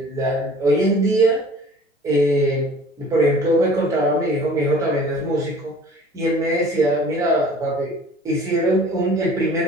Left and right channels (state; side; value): normal; both; correlation 0.47